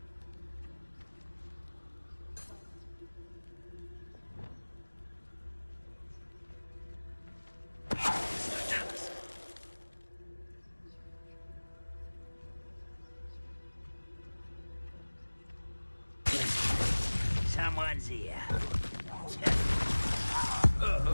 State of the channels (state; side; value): inverted; both; correlation -1.00